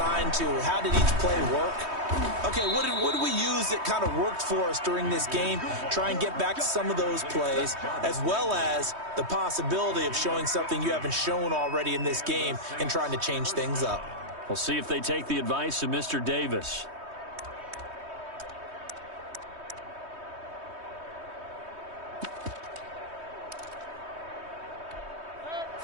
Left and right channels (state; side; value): late; left; 3.2 ms